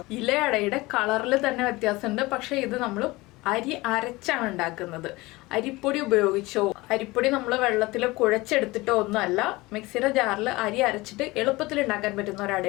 ഇലയടയുടെ കളറിൽ തന്നെ വ്യത്യാസമുണ്ട്. പക്ഷേ ഇത് നമ്മൾ അരി അരച്ചാണ് ഉണ്ടാക്കുന്നത്. അരിപ്പൊടി ഉപയോഗിച്ചോ, അരിപ്പൊടി നമ്മൾ വെള്ളത്തിൽ കുഴച്ചെടുത്തിട്ടോ ഒന്നുമല്ല, മിക്സിയുടെ ജാറിൽ അരി അരച്ചിട്ട് എളുപ്പത്തിൽ ഉണ്ടാക്കാൻ പറ്റുന്ന ഒരു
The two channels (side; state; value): right; quieter; 21.2 dB